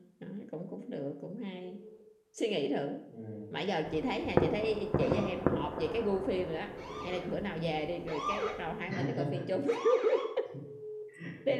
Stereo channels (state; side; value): identical; both; correlation 1.00